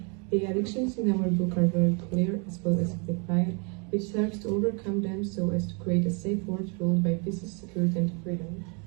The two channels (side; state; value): left; quieter; 34.6 dB